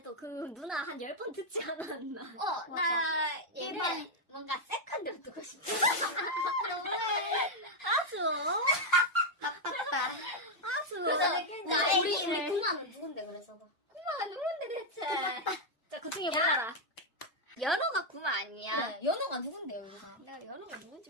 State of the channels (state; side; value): normal; both; correlation 0.01